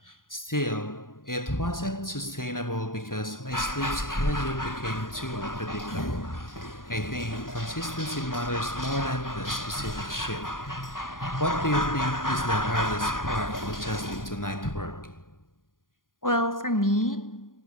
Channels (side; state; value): right; late; 0.90 ms